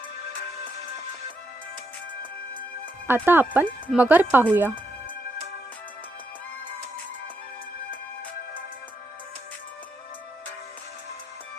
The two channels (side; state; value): both; normal; correlation 0.80